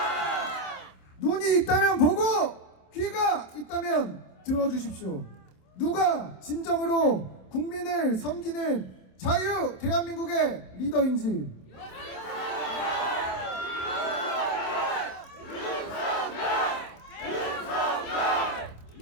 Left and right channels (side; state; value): right; late; 27 ms